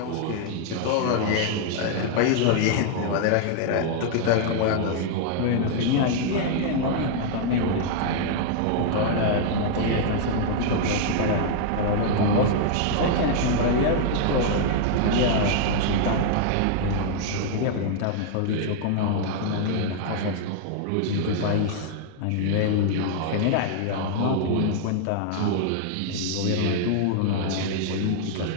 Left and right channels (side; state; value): both; different; correlation 0.00